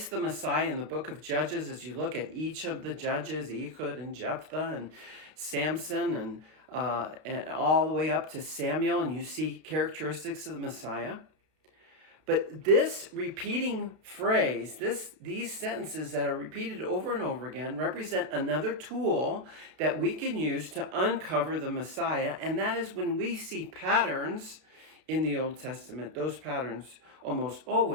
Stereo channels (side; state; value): left; late; 33 ms